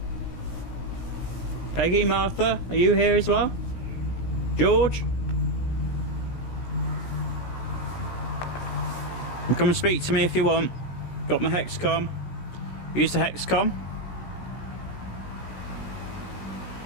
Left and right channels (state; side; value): late; right; 16 ms